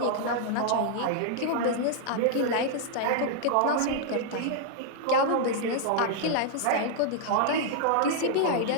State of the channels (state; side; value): different; both; correlation -0.01